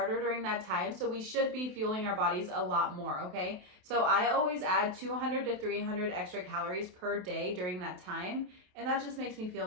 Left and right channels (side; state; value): left; late; 28 ms